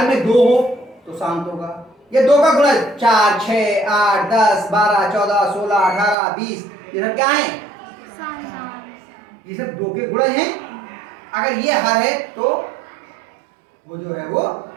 में 2 हो तो शांत होगा, या 2 का गुणज 4, 6, 8, 10, 12, 14, 16, 18, 20 ये सब क्या है? ये सब 2 के गुणज हैं। अगर ये हर है तो वो जो है वो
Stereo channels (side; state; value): left; drops out; at 6.2 s